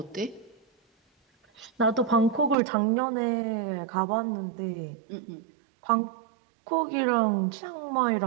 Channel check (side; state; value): left; drops out; at 2.6 s